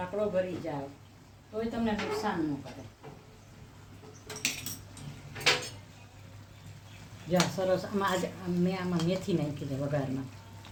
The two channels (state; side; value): identical; both; correlation 1.00